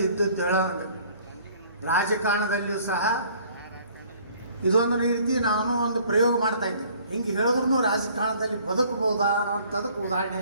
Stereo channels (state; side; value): inverted; both; correlation -0.56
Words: ಇದ್ದದ್ದು ಹೇಳೋದು. ರಾಜಕಾರಣದಲ್ಲಿಯೂ ಸಹ ಇದೊಂದು ರೀತಿ ನಾನು ಒಂದು ಪ್ರಯೋಗ ಮಾಡ್ತಾ ಇದ್ದೆ. ಹಿಂಗೆ ಹೇಳಿದ್ರು ರಾಜಕಾರಣದಲ್ಲಿ ಬದುಕಬಹುದಾ ಅನ್ನೋಂಥದಕ್ಕೆ ಉದಾಹರಣೆ